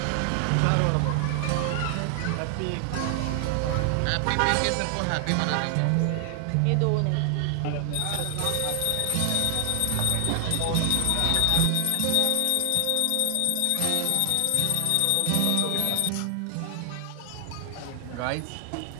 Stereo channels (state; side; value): different; both; correlation 0.00